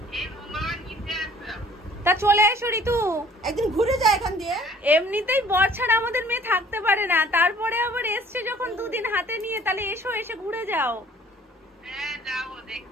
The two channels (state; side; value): normal; both; correlation 0.54